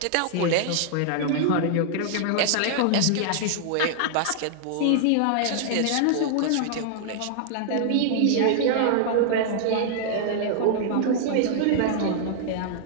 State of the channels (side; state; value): both; different; correlation -0.01